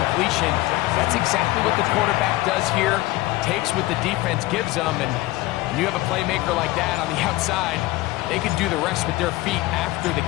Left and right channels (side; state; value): right; quieter; 18.6 dB